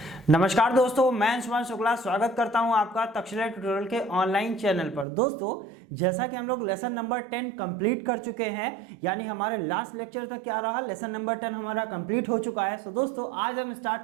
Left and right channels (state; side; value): drops out; left; at 5.1 s